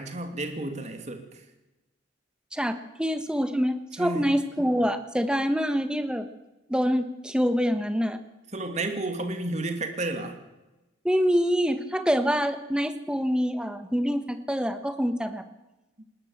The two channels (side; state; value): both; normal; correlation 0.89